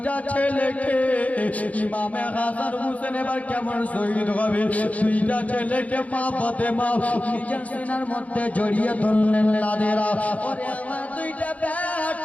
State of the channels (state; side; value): late; right; 0.069 ms